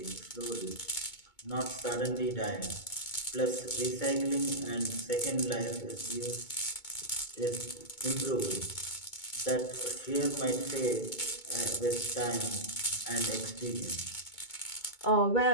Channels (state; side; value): late; right; 2.2 ms